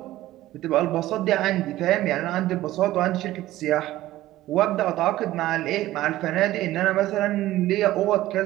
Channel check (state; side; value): quieter; left; 15.5 dB